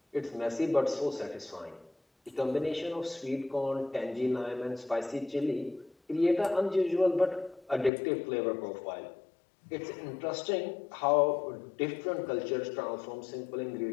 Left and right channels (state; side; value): drops out; right; at 7.9 s